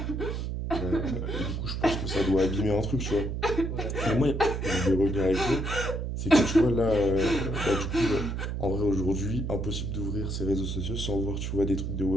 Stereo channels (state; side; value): noise; right; hum, 3 dB below the sound